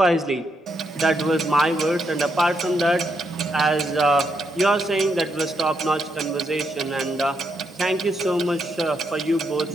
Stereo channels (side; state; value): both; normal; correlation 0.79